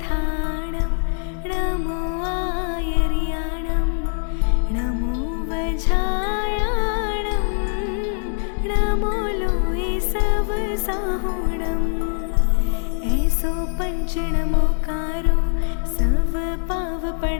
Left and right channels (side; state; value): right; silent; 64 dB below the other